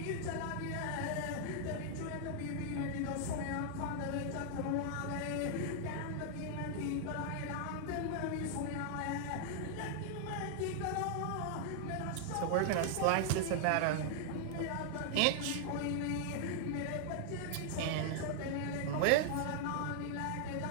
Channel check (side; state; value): both; different; correlation -0.01